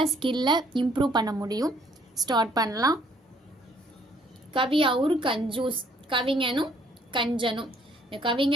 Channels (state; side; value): normal; both; correlation 0.63